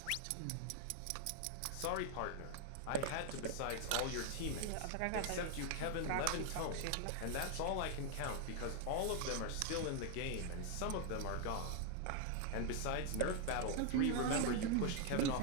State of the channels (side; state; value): both; different; correlation 0.00